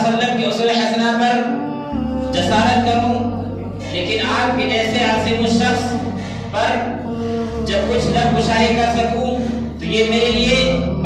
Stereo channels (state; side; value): identical; both; correlation 1.00